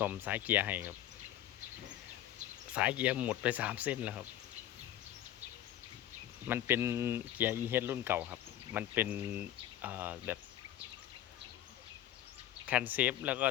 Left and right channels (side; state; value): right; quieter; 12.8 dB